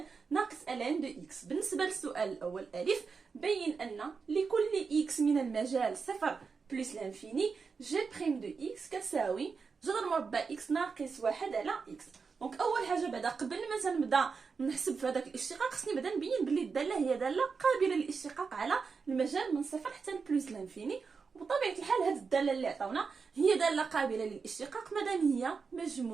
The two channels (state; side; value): quieter; left; 5.2 dB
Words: ناقص الان دو اكس. بالنسبه للسؤال الاول الف، بين ان لكل اكس من المجال صفر بلس لانفيني جي بريم دو اكس كتساوي جذر مربع اكس ناقص 1 على اكس. دونك اول حاجه بعدا قبل ما تنبدا نحسب في هذاك الاشتقاق خصني بعدا نبين بلي الداله هي داله قابله للاشتقاق على المجال من صفر حتى بلس لانفيني. وبطبيعه الحال هذه الداله اللي عطاونا هي داله قابله للاشتقاق مادام هي